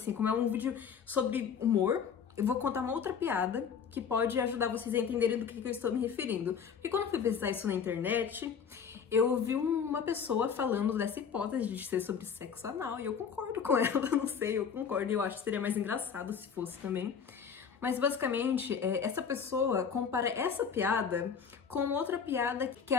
como é um vídeo sobre humor. Eu vou contar uma outra piada que pode ajudar vocês a entenderem do que eu estou me referindo. Porque quando eu fui pesquisar isso na internet, eu vi uma pessoa falando dessa hipótese de ser sobre sexo anal, e eu concordo com ela, não sei, eu concordo, e eu acho que seria mais engraçado se fosse também. Mas basicamente, essa pessoa compara essa piada com outra piada, que é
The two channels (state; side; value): quieter; right; 6.9 dB